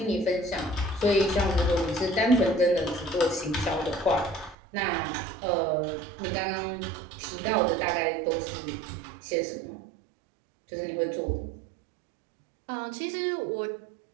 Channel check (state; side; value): drops out; left; at 4.5 s